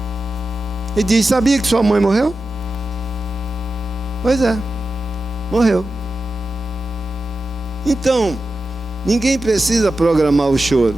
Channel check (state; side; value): normal; both; correlation 0.92